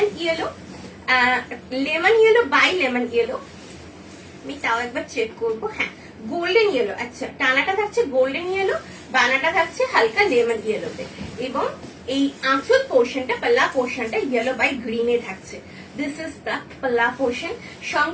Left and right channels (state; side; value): identical; both; correlation 1.00